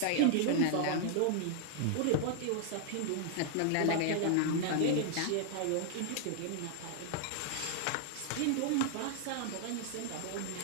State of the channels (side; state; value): both; different; correlation -0.01